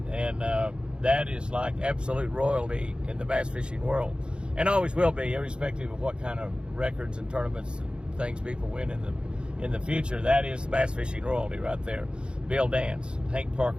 And that is like absolute royalty in the bass fishing world, and always will be, irrespective of what kind of records and tournaments and things people win in the future. That is bass fishing royalty right there. Bill Dance, Hank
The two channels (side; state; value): left; late; 0.054 ms